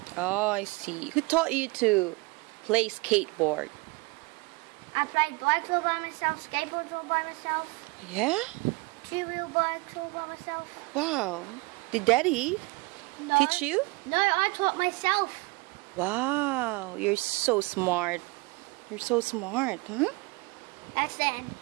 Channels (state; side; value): quieter; left; 25.2 dB